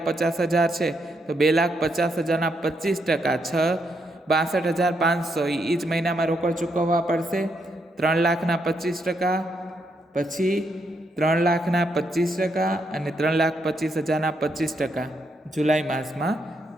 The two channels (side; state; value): both; normal; correlation 0.78